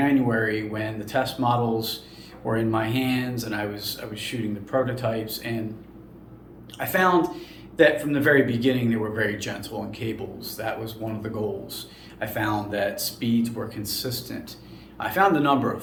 when the test models were in my hands and I was shooting the prototypes. And I found that from the very beginning, they were very gentle in cables. That was one of the goals. I found that speeds were consistent. I found a number of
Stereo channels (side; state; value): both; identical; correlation 1.00